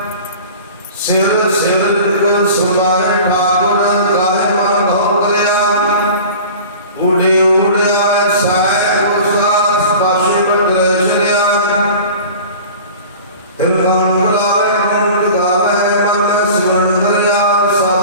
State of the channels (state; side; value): inverted; both; correlation -0.40